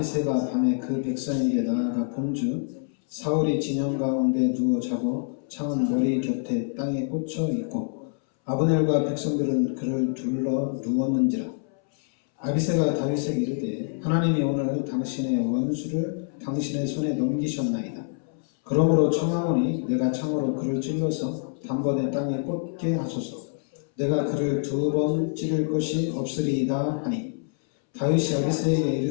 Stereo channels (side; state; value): right; silent; 61 dB below the other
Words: 밤에 그 백성에게 나아가 본즉 사울이 진영 가운데 누워 자고 창은 머리 곁에 땅에 꽂혀 있고 아브넬과 백성들은 그를 둘러 누웠는지라. 아비새가 다윗에게 이르되 하나님이 오늘 당신의 원수를 당신의 손에 넘기셨나이다. 그러므로 청하오니 내가 창으로 그를 찔러서 단번에 땅에 꽂게 하소서. 내가 그를 2번 찌를 것이 없으리이다 하니 다윗이 아비새에게